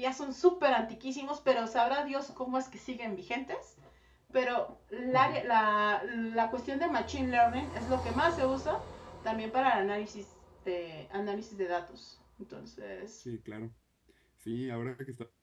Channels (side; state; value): both; identical; correlation 1.00